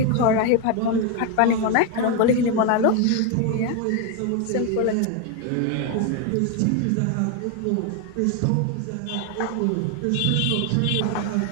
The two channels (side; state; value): both; different; correlation 0.01